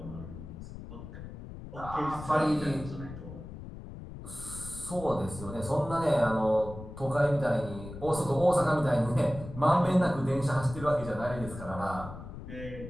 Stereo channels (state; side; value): noise; left; rumble, 12 dB below the sound